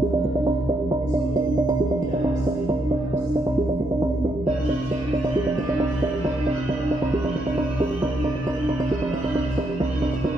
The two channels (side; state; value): right; noise; hum, 16 dB below the sound